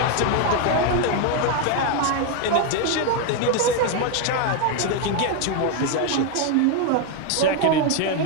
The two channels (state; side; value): different; both; correlation 0.01